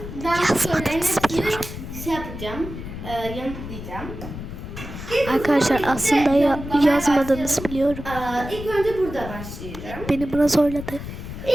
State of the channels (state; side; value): noise; left; rumble, 10 dB below the sound